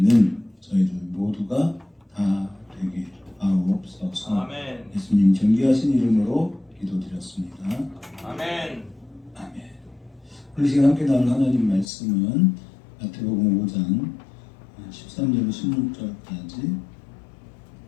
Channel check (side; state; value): right; drops out; at 11.9 s